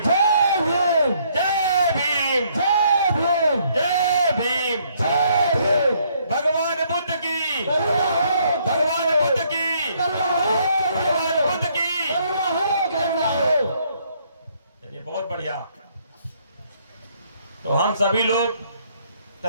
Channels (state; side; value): inverted; both; correlation -0.67